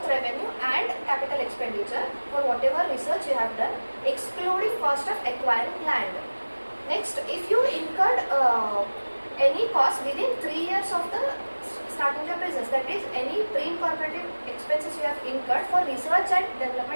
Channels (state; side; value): inverted; both; correlation -1.00